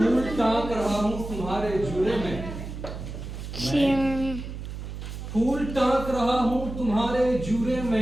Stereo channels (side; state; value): right; noise; hum, 8 dB below the sound